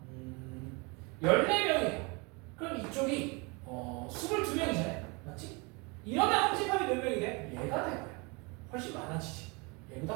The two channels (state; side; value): quieter; left; 29.2 dB